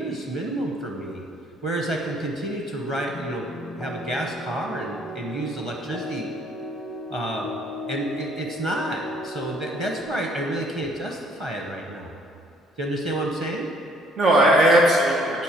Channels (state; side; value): normal; both; correlation 0.62